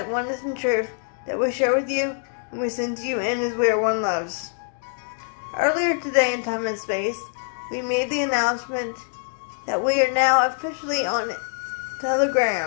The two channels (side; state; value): right; silent; 62 dB below the other